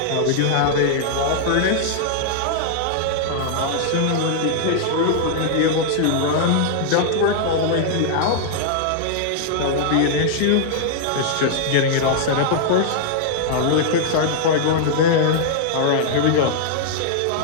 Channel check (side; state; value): both; different; correlation -0.01